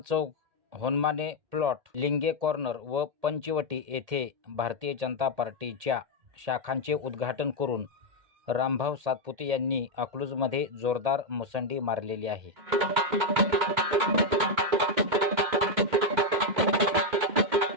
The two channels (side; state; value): left; late; 2.1 ms